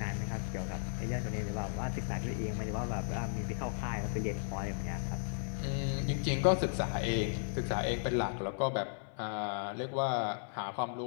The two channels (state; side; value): silent; right; 54 dB below the other